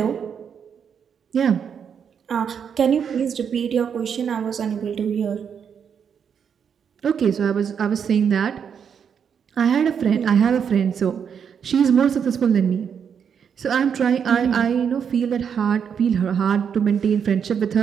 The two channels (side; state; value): left; quieter; 7.4 dB